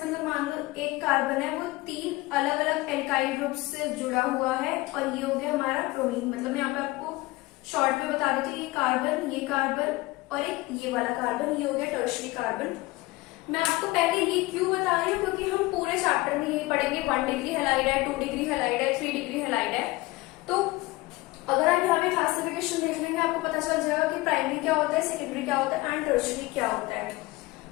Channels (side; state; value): right; quieter; 20.7 dB